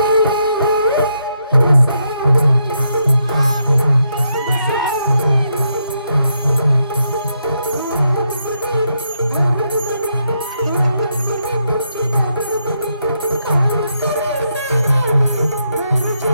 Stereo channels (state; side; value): inverted; both; correlation -0.79